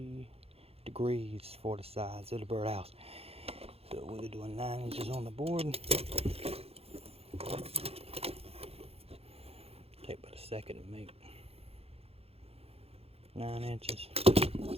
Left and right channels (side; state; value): left; late; 0.29 ms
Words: degrees for the sides of the birdhouse. So we're doing 9 inches on the board. Take about a second to make 9 inches.